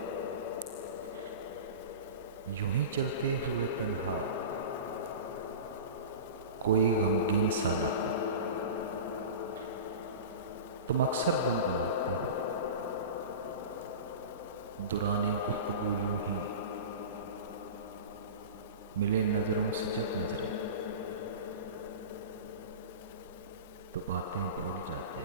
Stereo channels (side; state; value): both; inverted; correlation -0.31